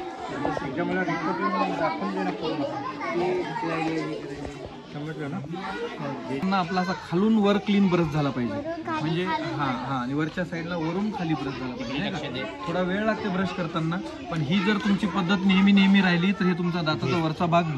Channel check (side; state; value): both; identical; correlation 1.00